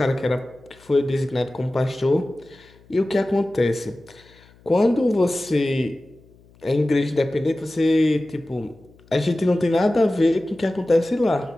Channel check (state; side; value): noise; left; hum, 28 dB below the sound